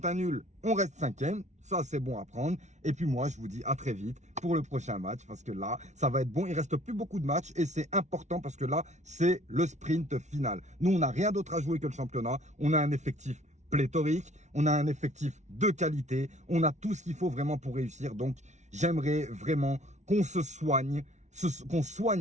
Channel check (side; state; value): left; late; 0.33 ms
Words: un nul, on reste 5e. Ça, c'est bon à prendre. Et puis moi, je vous dis à très vite pour le prochain match parce que là, ça va être bon. Il reste plus beaucoup de matchs et c'est important parce que là, c'est le sprint final. Nous, on n'a rien d'autre à jouer que le championnat. On a un effectif pléthorique. On a un effectif de qualité. On a tout ce qu'il faut vraiment pour réussir. Donc, j'aimerais vraiment qu'on se soigne, qu'on